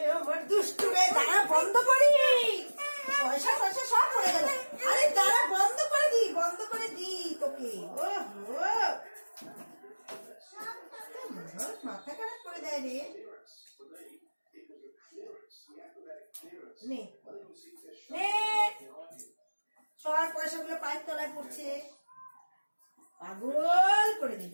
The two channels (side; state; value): both; inverted; correlation -1.00